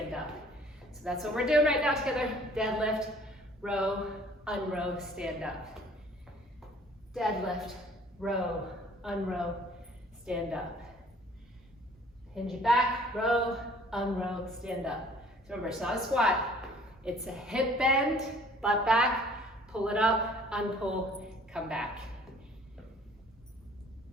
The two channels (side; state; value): both; normal; correlation 0.54